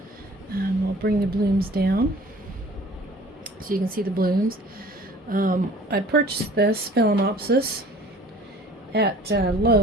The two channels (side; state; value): both; normal; correlation 0.49